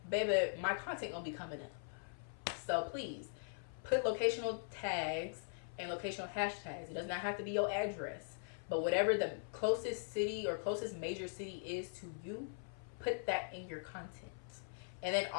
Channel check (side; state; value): right; silent; 50 dB below the other